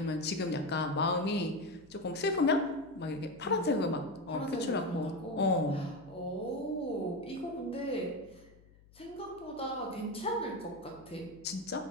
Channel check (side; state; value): left; noise; hum, 25 dB below the sound